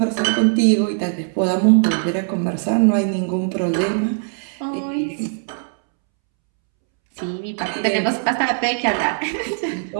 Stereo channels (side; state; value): left; silent; 66 dB below the other